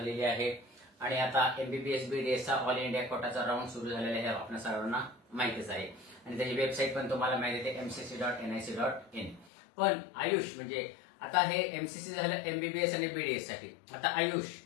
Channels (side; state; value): right; drops out; at 9.5 s